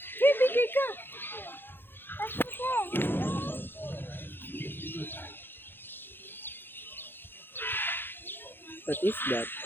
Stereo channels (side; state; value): right; late; 0.10 ms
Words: Bigay ka. What is that?